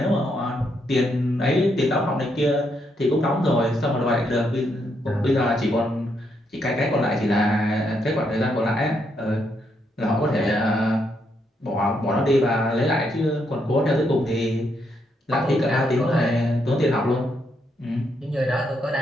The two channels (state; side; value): normal; both; correlation 0.77